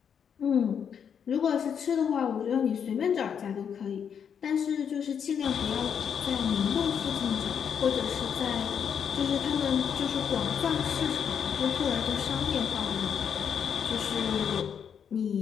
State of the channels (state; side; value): quieter; right; 7.7 dB